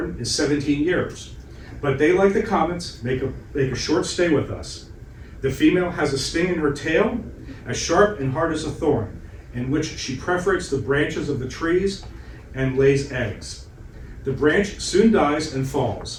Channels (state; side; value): identical; both; correlation 1.00